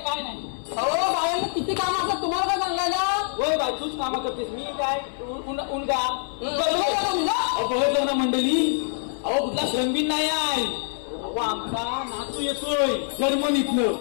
काय नाही. अहो बाळांनी किती काम असतात तुम्हाला काय सांगायला. होय बाई तूच कामं करतेस मी काय उनगा बघितलं ना मंडळी. अहो कुठला श्रमबीन नाही आहे. अहो आमचा नातू येतोय जर्मनीतलं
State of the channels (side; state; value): right; silent; 59 dB below the other